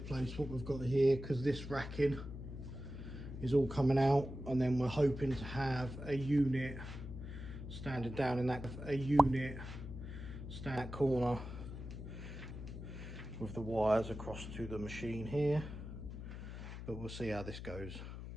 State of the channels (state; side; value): noise; left; hum, 9 dB below the sound